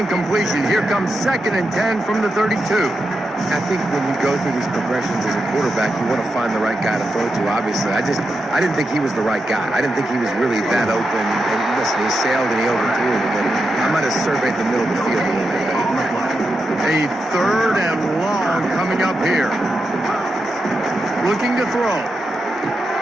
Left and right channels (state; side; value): normal; both; correlation 0.87